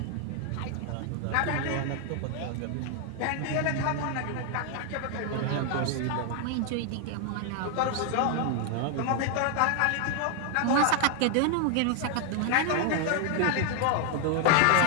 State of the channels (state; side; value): different; both; correlation 0.00